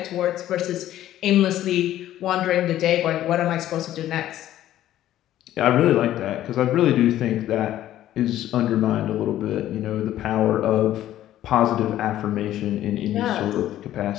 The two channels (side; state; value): right; quieter; 13.0 dB